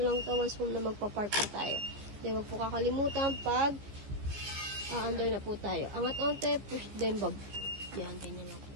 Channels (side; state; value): left; late; 15 ms